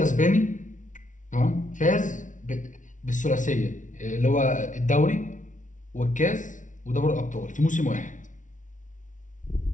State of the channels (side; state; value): right; late; 0.37 ms